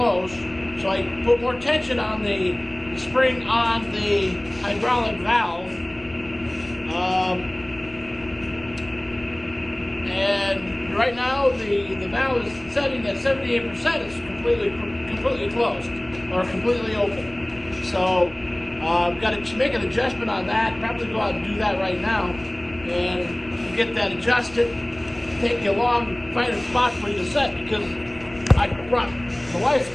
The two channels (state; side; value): noise; left; rumble, 21 dB below the sound